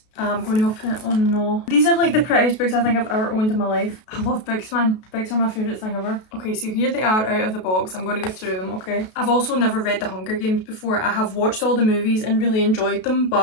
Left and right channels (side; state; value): right; late; 32 ms